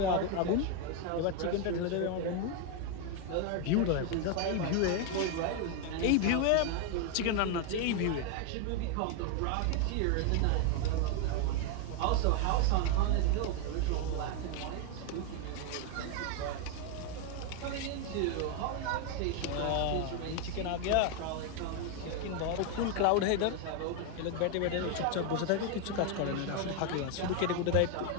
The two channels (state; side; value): different; both; correlation 0.01